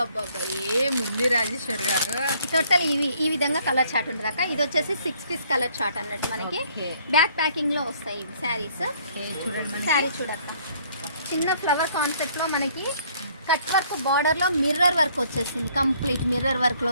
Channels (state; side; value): inverted; both; correlation -0.62